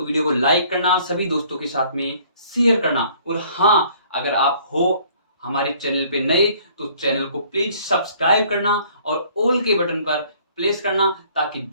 वीडियो को लाइक करना, सभी दोस्तों के साथ में शेयर करना। और हाँ, अगर आप हो हमारे चैनल पे नए तो चैनल को प्लीज सब्सक्राइब करना और ऑल के बटन पर प्लेस करना, ताकि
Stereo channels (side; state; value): both; inverted; correlation -0.58